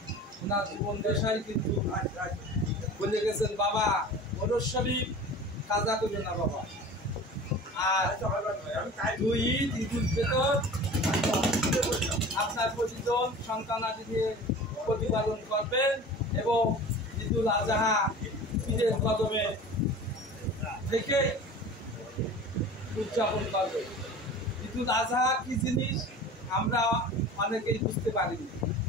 ওনার জীবন দেশাই কিন্তু বলে গেছেন, বাবা ওরস শরীফ কাজা করবে না বাবা, আর দুই ঈদ ঈদুল ফিতর আপনার প্রতিজন সন্তানাদি নিয়ে প্রতিপালন করবেন এবং ঈদুল আজহা ঈদের কদমে থেকে উদযাপন করবেন। ঈদুল আজহা কি জিনিস আমরা অনেকেই বুঝতে পারিনি,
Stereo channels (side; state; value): both; normal; correlation 0.39